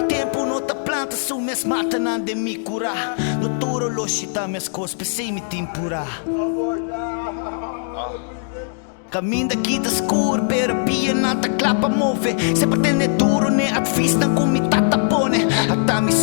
Tempo não tá planta, sou mes mata não de me curar. No turo loxita mes cos, pensei me tempura. Caminho daqui da escuro, pera pia nata clapa move. Se pretende duro, ne at fista com mi tata pone. Até mi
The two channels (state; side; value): silent; right; digital silence